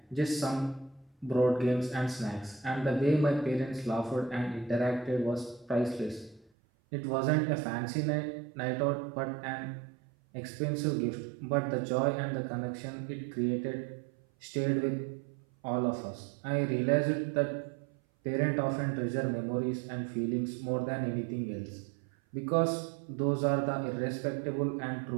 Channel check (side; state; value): left; drops out; at 6.5 s